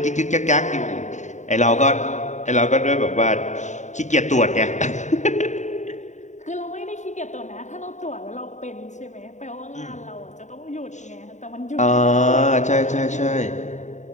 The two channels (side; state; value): right; late; 0.34 ms